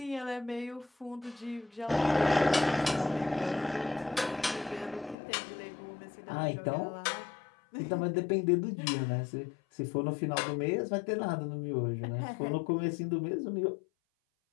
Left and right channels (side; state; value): right; drops out; at 5.2 s